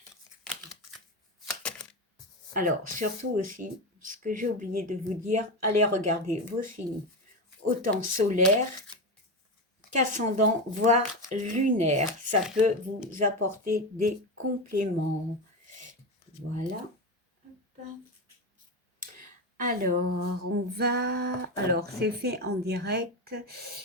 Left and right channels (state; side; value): normal; both; correlation 0.17